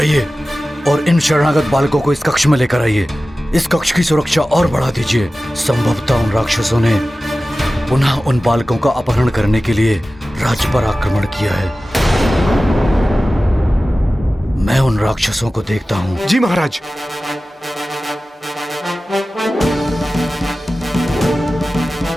और इन शरणागत बालकों को इस कक्ष में लेकर आइए। इस कक्ष की सुरक्षा और बढ़ा दीजिए। संभवतः उन राक्षसों ने पुनः उन बालकों का अपहरण करने के लिए राज्य पर आक्रमण किया है। मैं उन राक्षसों को देखता हूँ। जी महाराज।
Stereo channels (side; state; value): both; normal; correlation 0.96